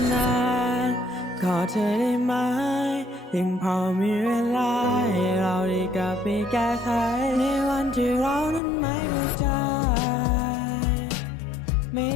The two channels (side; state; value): right; drops out; at 8.6 s